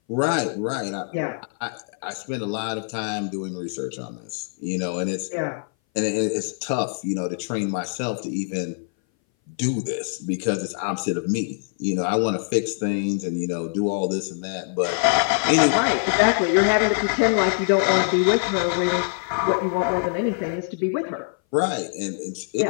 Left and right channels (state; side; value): silent; right; 60 dB below the other